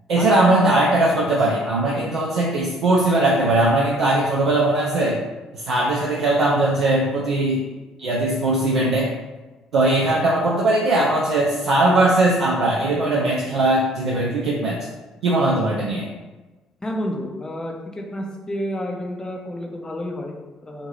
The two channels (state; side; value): normal; both; correlation 0.54